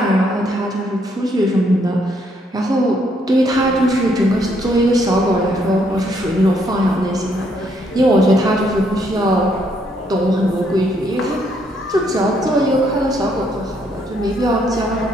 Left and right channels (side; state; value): both; normal; correlation 0.71